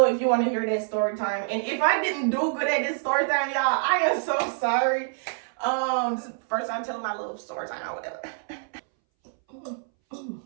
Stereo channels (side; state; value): left; silent; 61 dB below the other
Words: if you want to hear that story time. And if I didn't do good at this story time, y'all, I am so sorry. This is the first time telling my little story time or whatever.